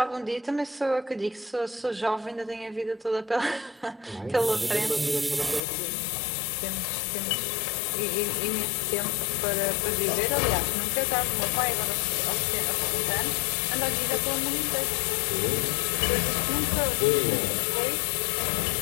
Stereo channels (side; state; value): right; drops out; at 5.6 s